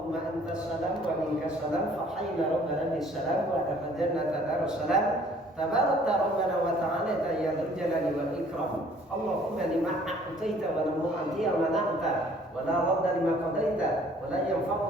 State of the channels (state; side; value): normal; both; correlation 0.57